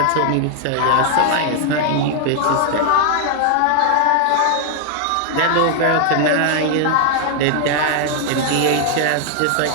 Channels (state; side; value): different; both; correlation 0.00